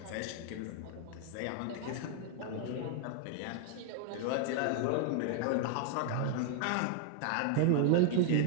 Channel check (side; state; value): both; different; correlation 0.00